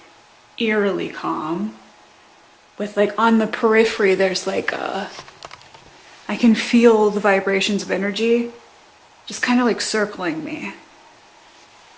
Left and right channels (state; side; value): identical; both; correlation 1.00